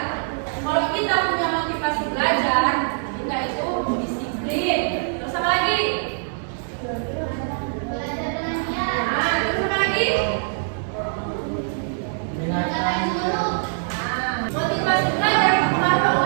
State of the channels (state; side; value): silent; left; digital silence